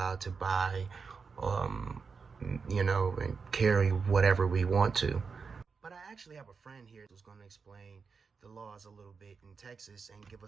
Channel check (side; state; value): left; quieter; 5.2 dB